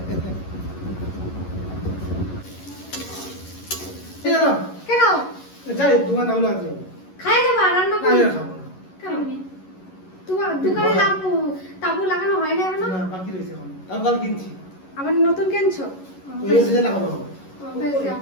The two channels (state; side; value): late; right; 11 ms